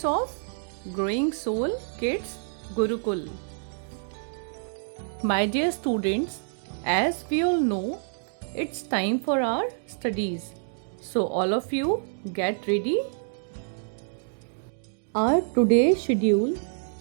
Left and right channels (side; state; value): left; silent; digital silence